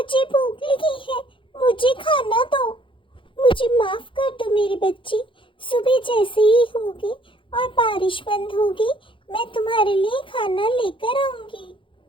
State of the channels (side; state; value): right; late; 0.25 ms